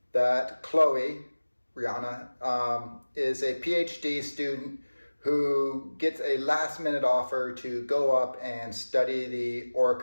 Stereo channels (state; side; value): inverted; both; correlation -1.00